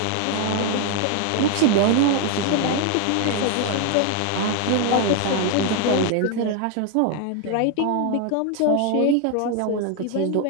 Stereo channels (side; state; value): both; different; correlation 0.01